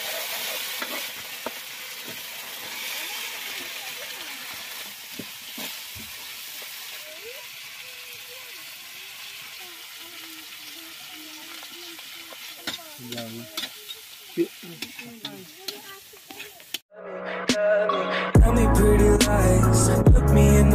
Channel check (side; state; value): both; identical; correlation 1.00